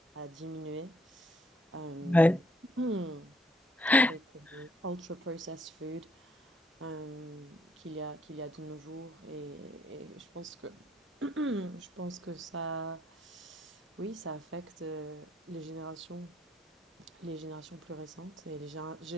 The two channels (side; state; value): both; normal; correlation 0.69